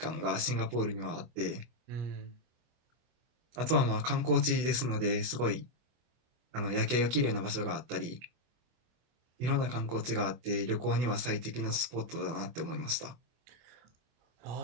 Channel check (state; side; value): late; left; 24 ms